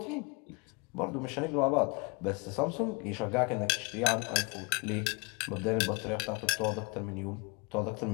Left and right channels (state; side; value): quieter; right; 29.2 dB